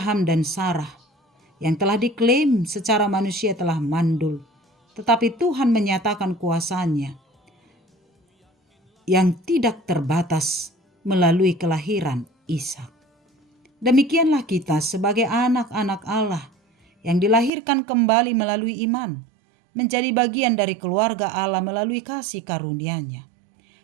dan Sarah yang telah diklaim secara manusia telah mandul, tetapi Tuhan menyatakan kuasa-Nya yang tidak terbatas melalui kelahiran Ishak. Demikianlah kita sebagai anak-anak Allah yang dilahirkan kembali melalui iman, menjadi bagian dari keluarga Allah melalui kasih karunia-Nya.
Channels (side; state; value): left; drops out; at 17.5 s